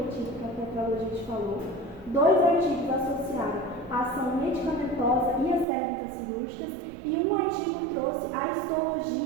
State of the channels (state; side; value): drops out; left; at 5.7 s